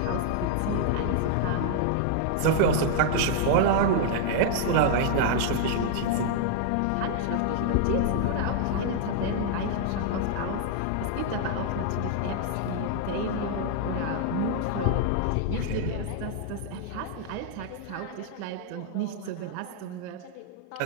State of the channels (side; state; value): both; different; correlation -0.01